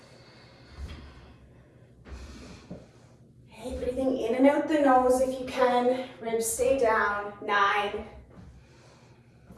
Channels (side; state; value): both; identical; correlation 1.00